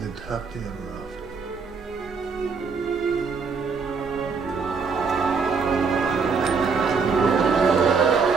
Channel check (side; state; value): left; quieter; 5.1 dB